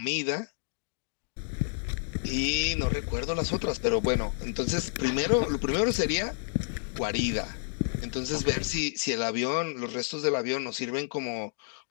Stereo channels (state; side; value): silent; right; digital silence